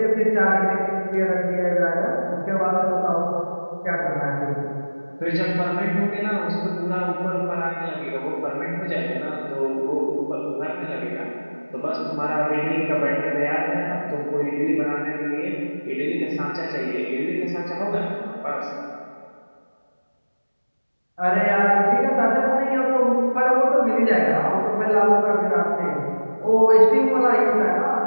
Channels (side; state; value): both; inverted; correlation -1.00